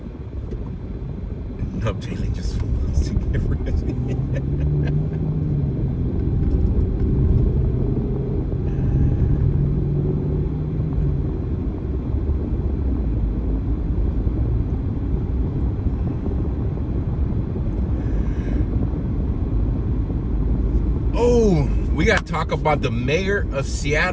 No, Jaylee just wants to get rid of me. Oh, we got to talk about the mayor of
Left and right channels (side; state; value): both; identical; correlation 1.00